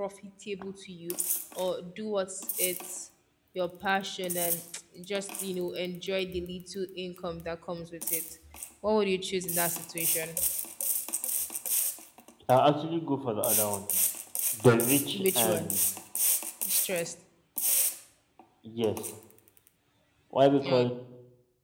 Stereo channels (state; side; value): identical; both; correlation 1.00